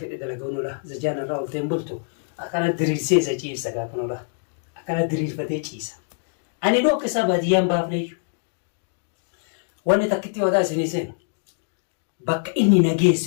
dalagaunudha. Zajaan irraa olteen bultu akkana diriirsee isa ciibsa gaafanudha. Akkana diriirfatee ciisa. Ani dhooqa isaa baadiyyaan baafneeyyu. Wanni takkitti wadaa isinii seenu bakka inni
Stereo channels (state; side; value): silent; right; digital silence